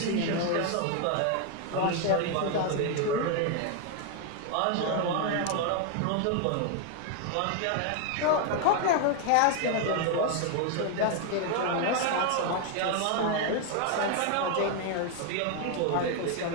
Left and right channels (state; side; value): different; both; correlation 0.01